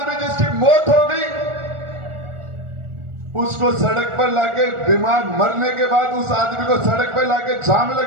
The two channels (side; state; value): left; late; 1.4 ms